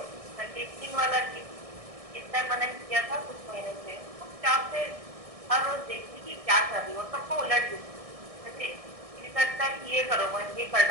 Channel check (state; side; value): late; left; 1.6 ms